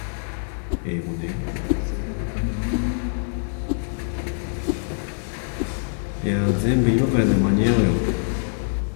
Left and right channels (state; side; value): silent; right; 62 dB below the other